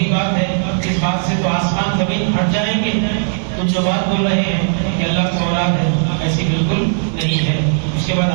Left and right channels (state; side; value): silent; left; digital silence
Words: بات ہے. اس بات سے تو آسمان زمین ہٹ جائیں گے. تم جو بات بول رہے ہیں کہ اللہ کا اولاد ہے، ایسی بالکل نہیں ہے. اس کے بعد